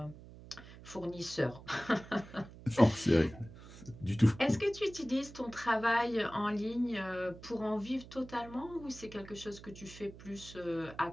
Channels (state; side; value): noise; right; hum, 17 dB below the sound